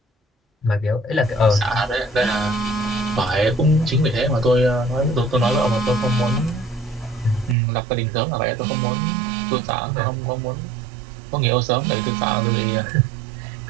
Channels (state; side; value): drops out; left; at 7.6 s